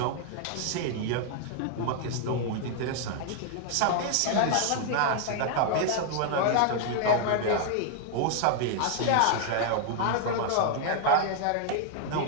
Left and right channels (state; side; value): different; both; correlation 0.00